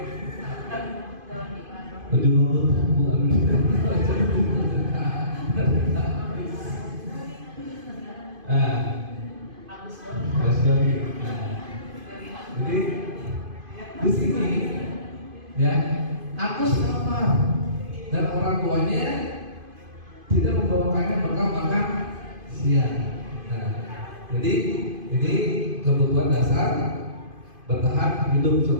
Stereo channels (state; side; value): late; left; 2.5 ms